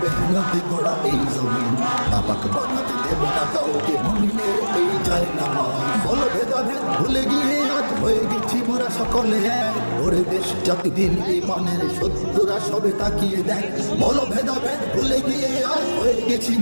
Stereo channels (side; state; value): both; inverted; correlation -1.00